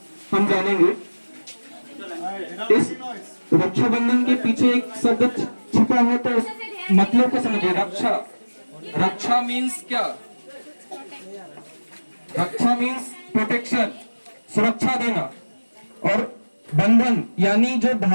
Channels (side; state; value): both; inverted; correlation -1.00